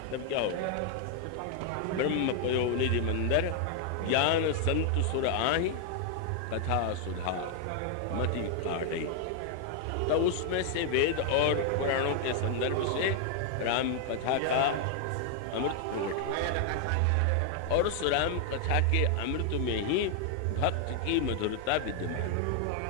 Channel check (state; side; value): different; both; correlation 0.00